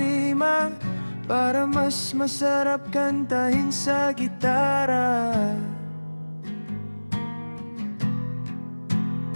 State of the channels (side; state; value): both; inverted; correlation -1.00